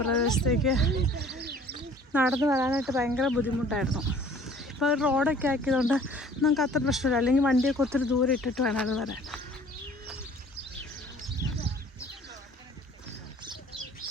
പ്രദേശത്തേക്ക് നടന്നു വരാനായിട്ട് ഭയങ്കര ബുദ്ധിമുട്ടായിരുന്നു. ഇപ്പോൾ റോഡൊക്കെ ആക്കിയതുകൊണ്ട് നമുക്ക് അത്ര പ്രശ്നമില്ല. അല്ലെങ്കിൽ വണ്ടിയൊക്കെ ഒത്തിരി ദൂരം ഇട്ടിട്ട് വേണം അത് വരാൻ.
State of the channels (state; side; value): normal; both; correlation 0.52